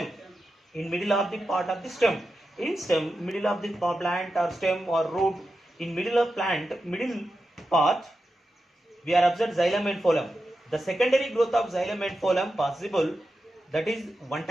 in middle of the part of the stem. In stem, middle of the plant or stem or root, in middle of plant, middle part, we are observed xylem and phloem. The secondary growth of xylem and phloem possible. That is one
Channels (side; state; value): both; normal; correlation 0.90